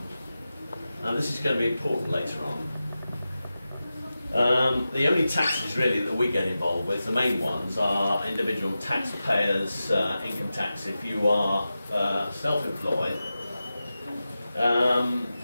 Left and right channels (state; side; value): inverted; both; correlation -0.93